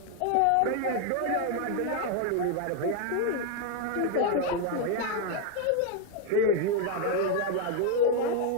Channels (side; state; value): both; different; correlation 0.00